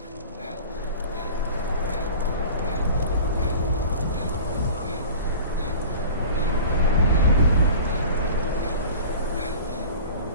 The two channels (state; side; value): inverted; both; correlation -0.38